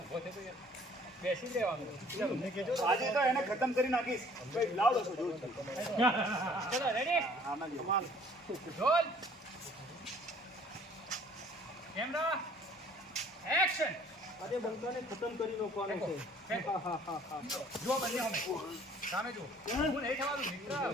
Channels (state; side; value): normal; both; correlation 0.55